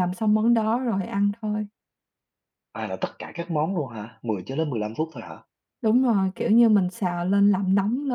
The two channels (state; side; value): identical; both; correlation 1.00